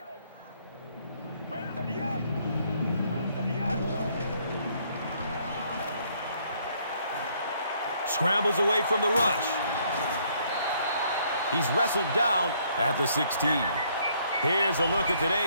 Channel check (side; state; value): both; inverted; correlation -0.66